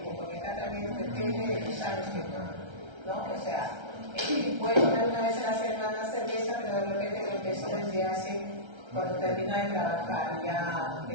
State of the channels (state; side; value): late; left; 1.3 ms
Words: porque acá también depende de los años que ¿no? O sea, puede tomar una vez a la semana cerveza, pero de repente lo empezó desde hace, cuando terminó de trabajar, ya